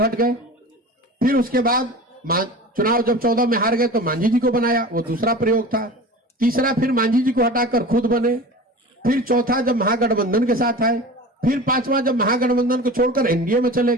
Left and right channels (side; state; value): both; normal; correlation 0.35